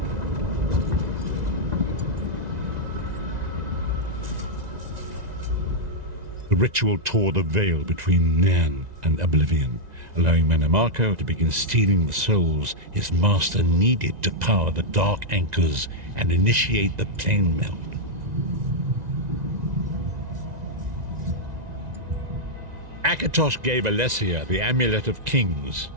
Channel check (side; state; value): left; late; 1.9 ms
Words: The ritual tore the veil between Nairn and Oblivion, allowing Manamako to begin stealing the souls his master needed to power the dark anchors and initiate the plane meld. Akatosh gave Alessia the Amulet of Kings